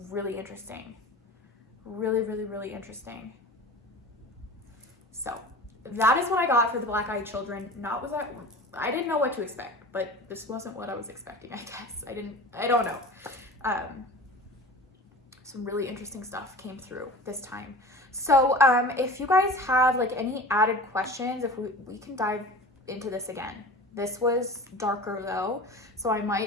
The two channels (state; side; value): normal; both; correlation 0.36